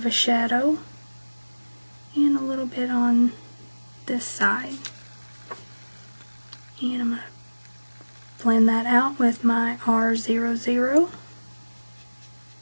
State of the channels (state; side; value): inverted; both; correlation -1.00